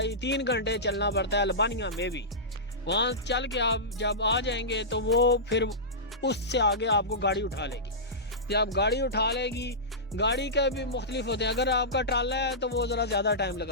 گھنٹے چلنا پڑتا ہے البانیہ میں بھی۔ وہاں چل کے آپ جب آ جائیں گے تو وہ پھر اس سے آگے آپ کو گاڑی اٹھا لے گی، جب گاڑی اٹھا لے گی، گاڑی کا بھی مختلف ہوتے ہیں، اگر آپ کا ٹرالا ہے تو وہ ذرا زیادہ ٹائم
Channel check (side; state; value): both; normal; correlation -0.17